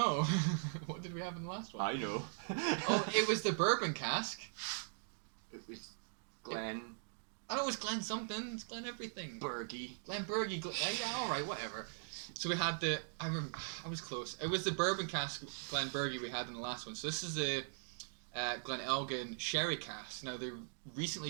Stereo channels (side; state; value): left; silent; digital silence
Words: What did we have in the last one? I know. Oh, it was the bourbon cask. It was Glen. I know it was Glen something. It's Glen everything. Bergie. Glen Bergie. Yeah, all right, whatever. So we had the. I was close. It was the bourbon cask Glen Bergie we had in the last one. So this is a Glen Elgin sherry cask. Now they recently